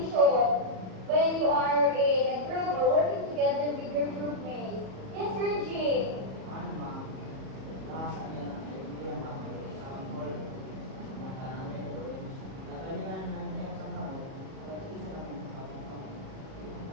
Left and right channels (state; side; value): late; left; 37 ms